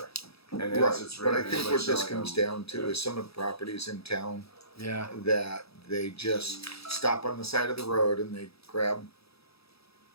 And Right, as it's but I written, think anybody what this selling comes them- down to is some of the properties in town Yeah. that they just stop on the side of the road and they grab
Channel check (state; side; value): late; right; 0.77 ms